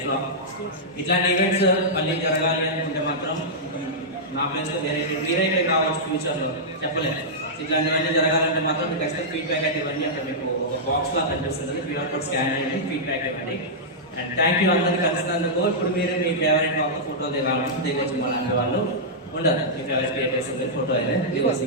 ఇట్లాంటి ఈవెంట్స్ మళ్ళీ జరగాలి అనుకుంటే మాత్రం నా ప్లేస్లో మీరైతే కావచ్చు ఫ్యూచర్లో, చెప్పలేదు. ఇట్లాంటివన్నీ జరగాలంటే మాత్రం మీకు ఖచ్చితంగా ఫీడ్బ్యాక్ అయితే ఇవ్వండి. అంటే మీకు ఒక బాక్స్ లా కనిపిస్తుంది, క్యూఆర్ కోడ్ స్కాన్ అయ్యి ఫీడ్బ్యాక్ ఇవ్వండి. అండ్ థ్యాంక్ యూ అందరికీ కలిసినందుకు. ఇప్పుడు మీరు మీ ఫేవరెట్ వాళ్ళతో ఫోటో దిగాలంటే దిగొచ్చు. అలాంటి వాళ్ళు ఉండదు, మీ ఫేవరెట్ క్రియేటర్స్ ఫోటో అయితే దిగొచ్చు,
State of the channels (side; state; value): both; normal; correlation -0.11